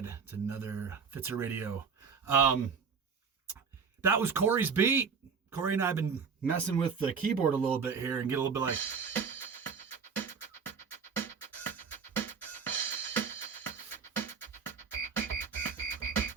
It's another Fitzer Radio. That was Corey's beat. Corey and I have been messing with the keyboard a little bit here and get a little bit like...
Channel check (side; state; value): left; quieter; 6.0 dB